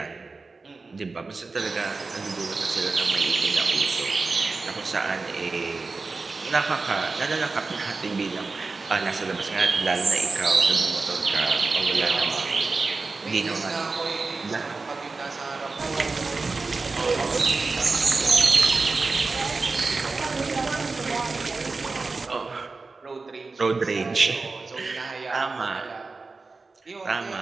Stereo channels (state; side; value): quieter; left; 3.9 dB